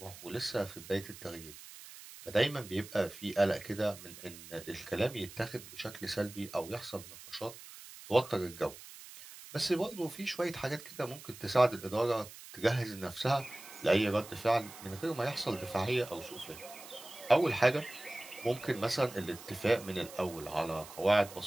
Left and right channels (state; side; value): noise; right; hiss, 16 dB below the sound